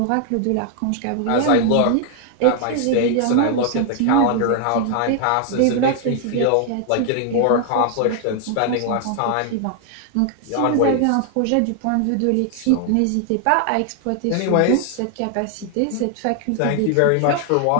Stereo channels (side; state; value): both; different; correlation 0.00